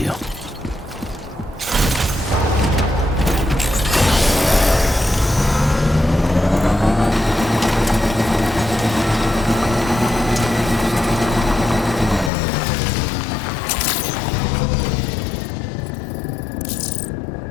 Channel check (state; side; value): drops out; right; at 12.3 s